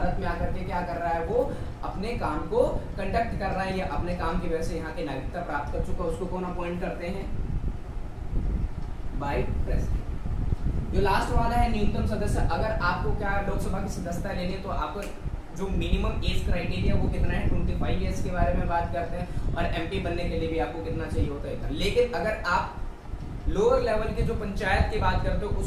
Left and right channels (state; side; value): identical; both; correlation 1.00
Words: में आकर के क्या कर रहा है, वो अपने काम को कंडक्ट कर रहा है या अपने काम की वजह से यहाँ की नागरिकता प्राप्त कर चुका है, उसको कौन अपॉइंट करते हैं, बाय प्रेसिडेंट। जो लास्ट वाला है न्यूनतम सदस्य। अगर आपको क्या लोकसभा की सदस्यता लेनी है तो आपको जो मिनिमम एज क्राइटेरिया वो कितना है, 25 ईयर्स के बारे में बात करते हैं। और MP बनने के लिए भी आपको कितना चाहिए होता है, इतना। लेकिन अगर आप लोअर लेवल के जो पंचायत की बात करते हो